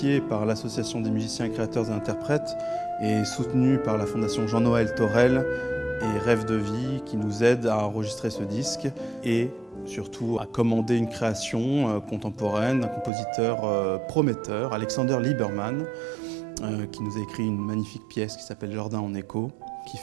par l'Association des musiciens, créateurs et interprètes et soutenu par la Fondation Jean-Noël Torel et Rêve de vie qui nous aident à enregistrer ce disque et surtout à commander une création contemporaine d'un compositeur prometteur, Alexander Liebermann, qui nous a écrit une magnifique pièce qui s'appelle Jardin en écho, qui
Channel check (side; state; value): left; drops out; at 13.1 s